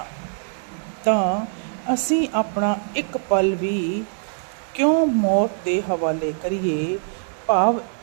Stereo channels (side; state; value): left; silent; 64 dB below the other